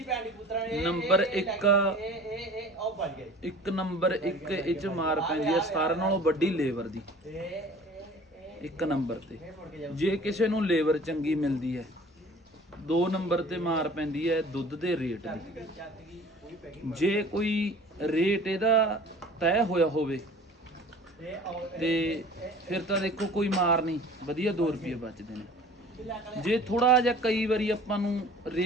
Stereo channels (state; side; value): normal; both; correlation 0.46